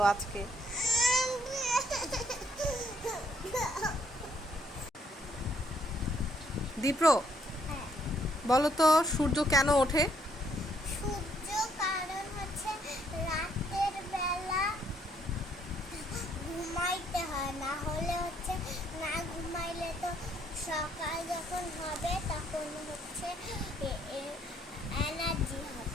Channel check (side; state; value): both; normal; correlation 0.69